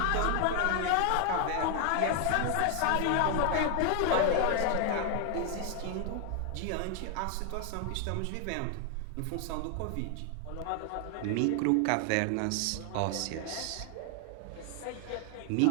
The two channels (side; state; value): both; different; correlation 0.00